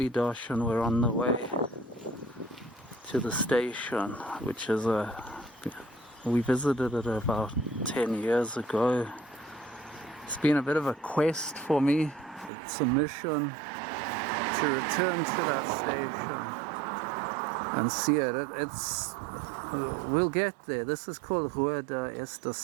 and we're on the way to the station, which is we visited it about 10 years ago. It's been a bit of a quest for me. It's a mission to return to that station and see it. We'll get there. This is called Rua da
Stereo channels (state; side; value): drops out; left; at 12.5 s